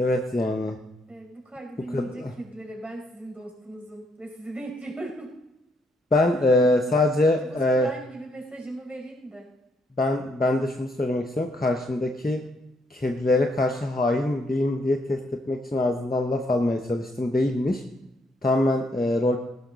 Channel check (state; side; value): normal; both; correlation 0.73